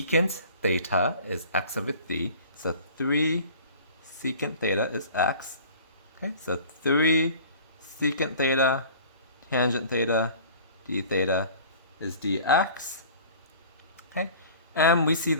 theta is x over 3. So 3 secant theta is x. Okay, so 3 secant theta tangent theta d theta is dx. Okay, and we see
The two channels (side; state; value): both; inverted; correlation -0.45